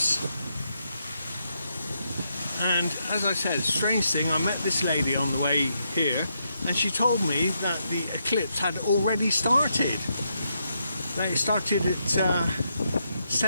And as I said, strange thing, I met this lady on the way here, and she told me that the eclipse had already started. They started at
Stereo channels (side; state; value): both; inverted; correlation -0.80